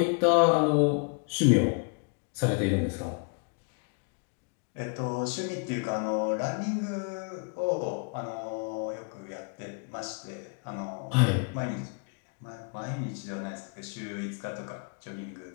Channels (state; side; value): quieter; right; 36.1 dB